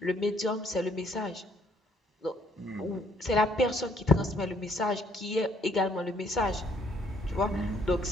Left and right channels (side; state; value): both; normal; correlation 0.65